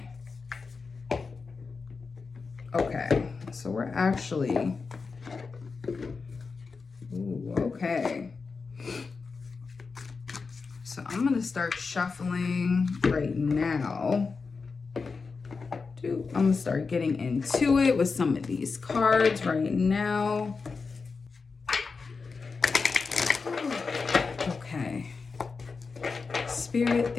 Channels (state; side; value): quieter; right; 4.7 dB